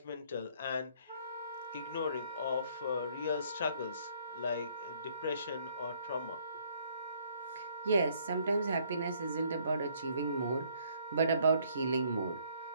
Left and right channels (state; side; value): inverted; both; correlation -0.64